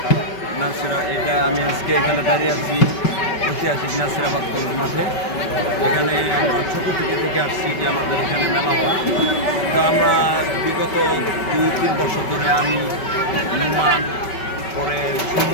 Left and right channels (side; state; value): right; late; 5.3 ms